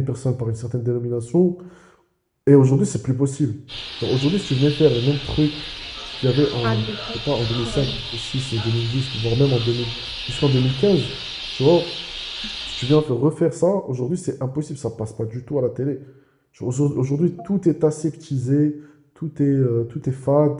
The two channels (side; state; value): both; identical; correlation 1.00